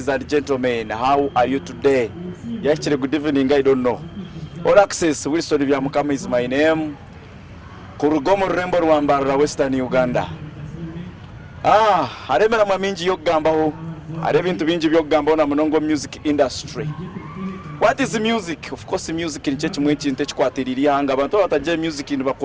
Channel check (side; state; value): both; identical; correlation 1.00